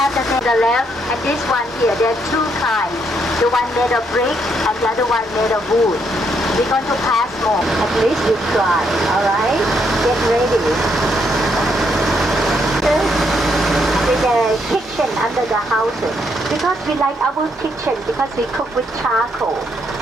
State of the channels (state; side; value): normal; both; correlation 0.75